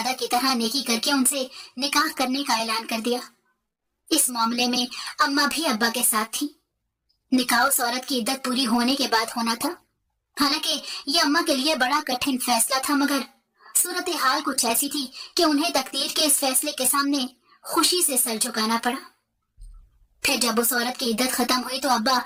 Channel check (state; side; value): identical; both; correlation 1.00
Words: की तरह नेकी करके उनसे निकाह करने का ऐलान कर दिया। इस मामले में अम्मा भी अब्बा के साथ थी। निकाह उस औरत की इद्दत पूरी होने के बाद होना था। हालांकि ये अम्मा के लिए बड़ा कठिन फैसला था, मगर सूरत हाल कुछ ऐसी थी कि उन्हें तकदीर के इस फैसले के सामने खुशी से सर झुकाना पड़ा। फिर जब उस औरत की इद्दत खत्म हुई तो अब्बा